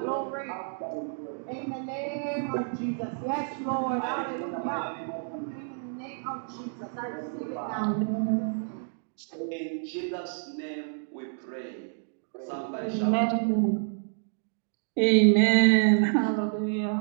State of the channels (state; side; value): silent; left; digital silence